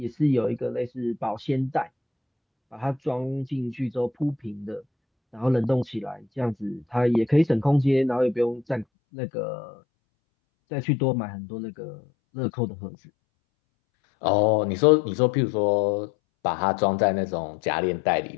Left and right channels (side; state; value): right; drops out; at 8.8 s